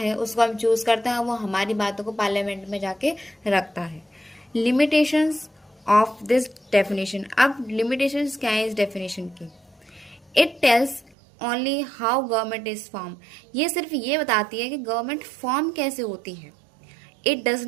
उसको हम चूज करते हैं। वो हमारी बातों को पार्लियामेंट में जाके रखता है। Limitations of this definition. अब लिमिटेशंस क्या है इस डेफिनेशन की? It tells only how government is form. ये सिर्फ ये बताती है कि गवर्नमेंट फॉर्म कैसे होती है। इट डज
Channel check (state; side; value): drops out; left; at 11.2 s